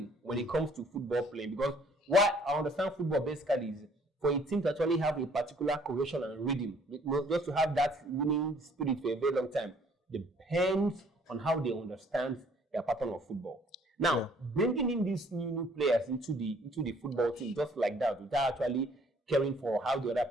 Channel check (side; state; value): both; normal; correlation 0.60